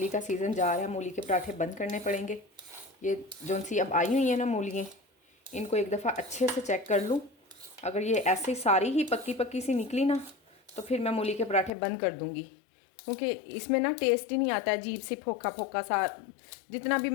का सीज़न जा रहा है, मूली के पराठे बंद करने पड़ेंगे। ये जो सी अब आई हुई है ना मूलियाँ, इनको एक दफ़ा अच्छे से चेक कर लूँ। अगर ये ऐसे ही सारी ही पक्की पक्की सी निकली ना, तो फिर मैं मूली के पराठे बंद कर दूँगी, क्योंकि इसमें ना टेस्ट ही नहीं आता है। अजीब सी फोका फोका सा, जितना भी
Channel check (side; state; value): right; drops out; at 11.7 s